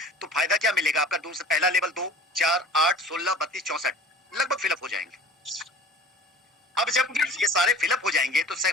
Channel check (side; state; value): both; normal; correlation 0.42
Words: तो फायदा क्या मिलेगा आपका? दूसरा पहला लेवल 2, 4, 8, 16, 32, 64 लगभग फिलअप हो जाएंगे। अब जब ये सारे फिलअप हो जाएंगे तो